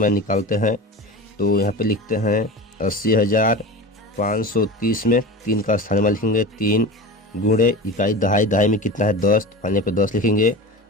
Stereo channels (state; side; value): normal; both; correlation 0.30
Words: मान निकालते हैं। तो यहाँ पे लिखते हैं 80,530 में 3 का स्थानीय मान लिखेंगे। 3 गुणे इकाई, दहाई, दहाई में कितना है 10, तो फाइनल पे 10 लिखेंगे।